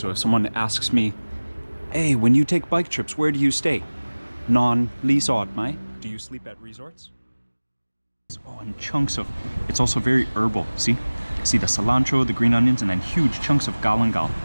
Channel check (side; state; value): both; inverted; correlation -1.00